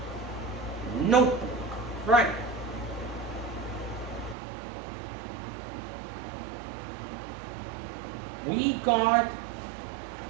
Notebook, right. We got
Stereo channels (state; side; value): drops out; left; at 4.4 s